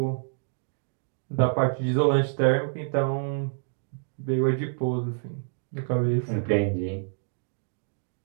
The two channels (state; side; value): silent; left; digital silence